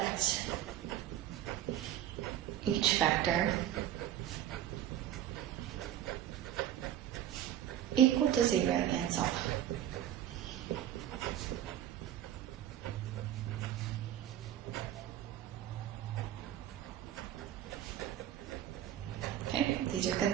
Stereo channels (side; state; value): left; quieter; 11.6 dB